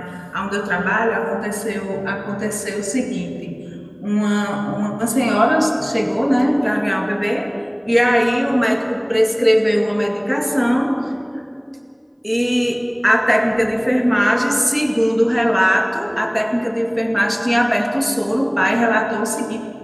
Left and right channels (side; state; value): both; identical; correlation 1.00